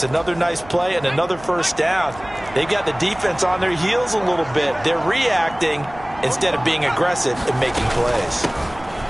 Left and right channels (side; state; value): right; noise; hum, 19 dB below the sound